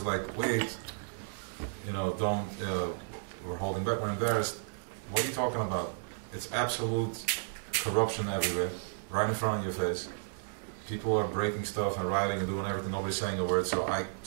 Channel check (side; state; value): left; silent; digital silence